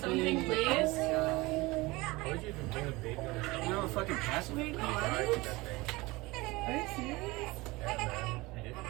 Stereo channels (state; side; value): quieter; left; 22.2 dB